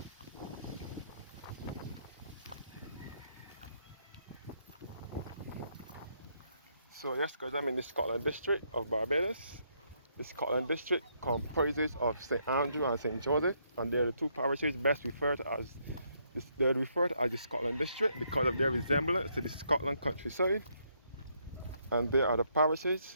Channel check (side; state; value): both; inverted; correlation -0.73